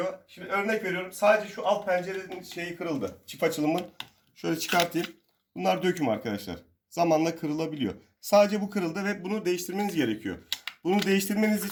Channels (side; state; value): both; identical; correlation 1.00